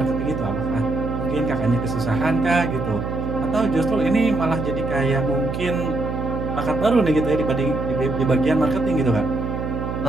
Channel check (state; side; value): noise; right; hum, 4 dB below the sound